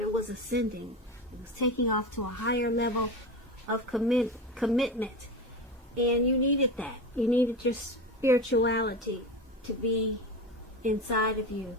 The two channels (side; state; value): both; normal; correlation 0.24